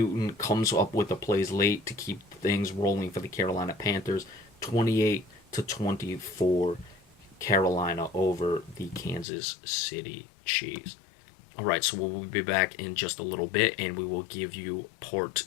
comes up with the plays late to keep things rolling for the Carolina Panthers. 28-24. Carolina over the Kansas City Chiefs. All right, so we'll be back in just a little bit, and we will give you part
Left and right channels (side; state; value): right; drops out; at 9.2 s